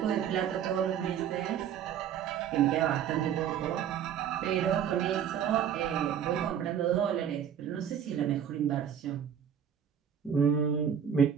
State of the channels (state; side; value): quieter; left; 8.7 dB